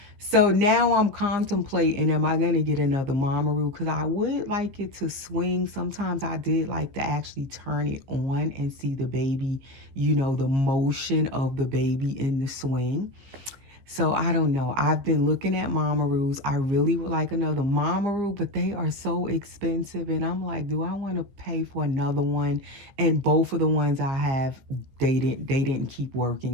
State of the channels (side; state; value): left; late; 15 ms